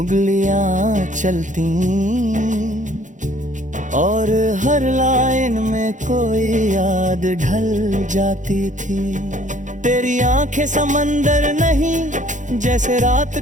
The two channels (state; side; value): late; left; 0.36 ms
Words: चलती और हर लाइन में कोई याद ढल जाती थी। तेरी आंखें समंदर नहीं, जैसे रात